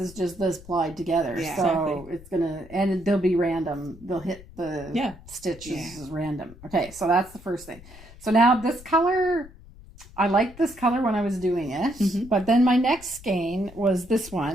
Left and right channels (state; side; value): noise; left; rumble, 19 dB below the sound